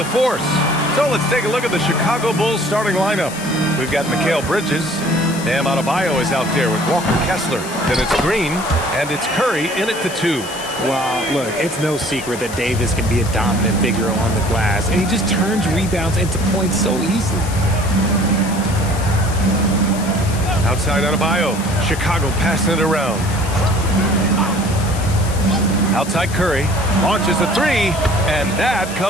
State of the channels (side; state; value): left; noise; hiss, 13 dB below the sound